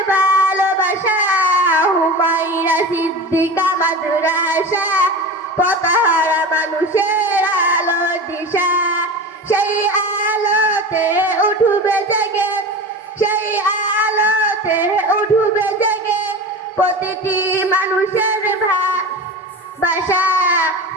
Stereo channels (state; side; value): normal; both; correlation 0.30